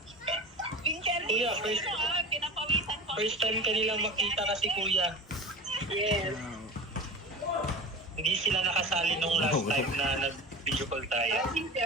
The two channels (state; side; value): normal; both; correlation 0.33